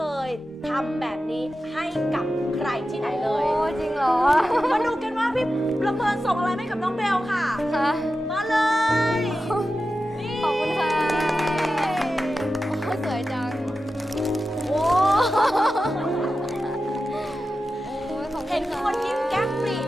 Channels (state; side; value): normal; both; correlation 0.92